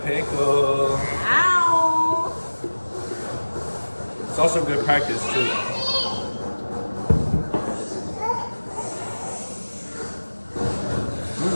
pickle. Ow. It's also good practice too.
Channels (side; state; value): both; inverted; correlation -1.00